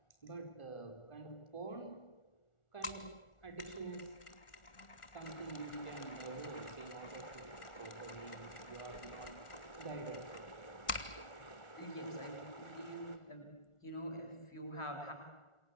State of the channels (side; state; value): right; late; 1.4 ms